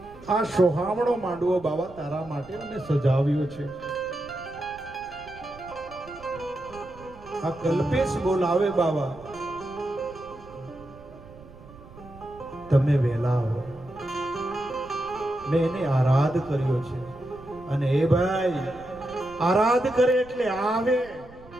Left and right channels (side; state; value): right; noise; rumble, 20 dB below the sound